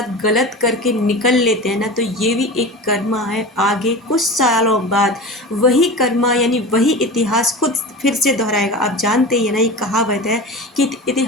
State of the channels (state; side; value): normal; both; correlation 0.31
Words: गलत करके निकल लेते हैं ना, तो ये भी एक कर्मा है। आगे कुछ सालों बाद वही कर्मा, यानी वही इतिहास खुद फिर से दोहराएगा। आप जानते ही है ना, ये कहावत है कि